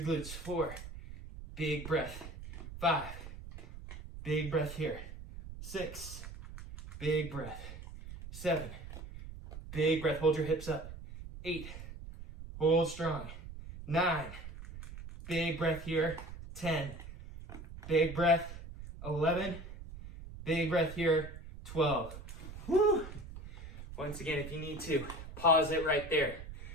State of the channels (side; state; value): right; noise; rumble, 12 dB below the sound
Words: glutes. 4, big breath. 5, big breath here. 6, big breath. 7, big breath. Hold your hips up. 8, hold strong. 9, big breath here. 10, big breath. 11, big breath here. 12. Woo! Once again, if you need to, pause it right there.